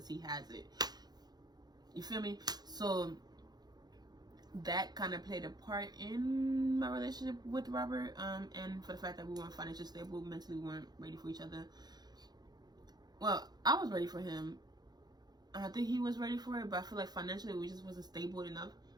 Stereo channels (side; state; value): left; late; 0.19 ms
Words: he has it. You feel me? So that kind of played a part in my relationship with Robert, and for the fact that we weren't financially stable, mentally we weren't ready for each other. Well, I was ready for him. I think he was ready for it, but I feel like financially we just wasn't stable enough